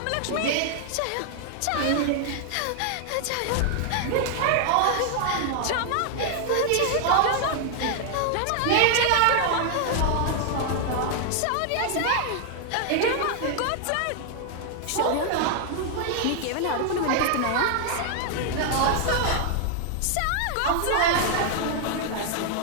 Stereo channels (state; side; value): different; both; correlation 0.00